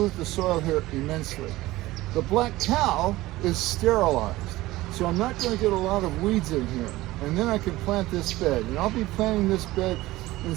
the soil here immensely. The black cow is sterilized, so I'm not going to get a lot of weeds in here. And then I can plant this bed. And I'll be planting this bed in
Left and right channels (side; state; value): left; quieter; 18.0 dB